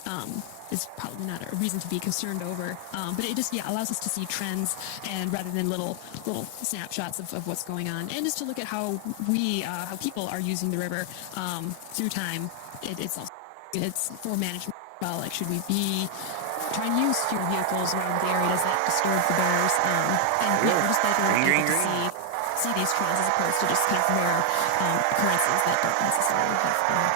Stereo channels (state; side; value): different; both; correlation 0.00